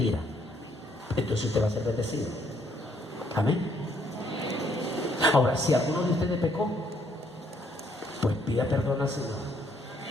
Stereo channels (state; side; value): normal; both; correlation 0.68